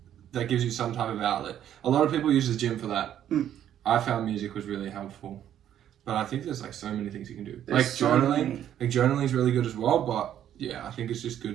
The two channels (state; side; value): quieter; left; 10.7 dB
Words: that gives you some type of outlet. A lot of people use the gym for that. I found music was really helpful. But I think there's like so many things you can do. There's like journaling. Like journaling is really good as well, but yeah, I think it's just